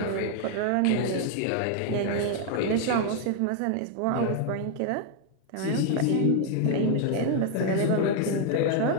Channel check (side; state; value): both; different; correlation 0.00